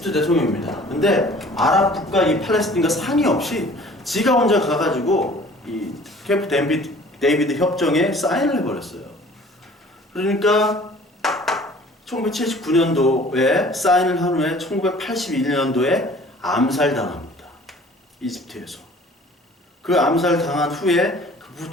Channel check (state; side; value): normal; both; correlation 0.50